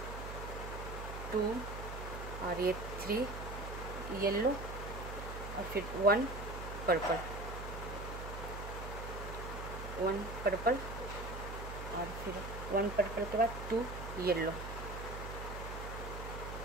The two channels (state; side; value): noise; right; hum, 8 dB below the sound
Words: 2 और ये 3 येलो और फिर 1 पर्पल, 1 पर्पल और फिर 1 पर्पल के बाद 2 येलो,